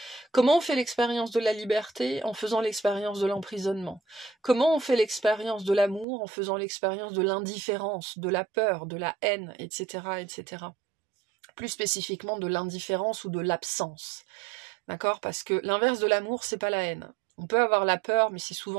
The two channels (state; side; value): drops out; left; at 6.1 s